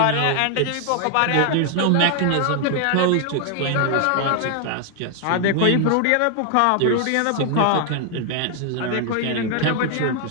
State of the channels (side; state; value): both; different; correlation 0.00